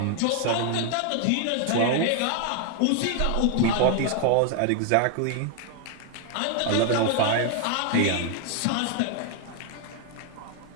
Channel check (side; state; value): both; different; correlation 0.00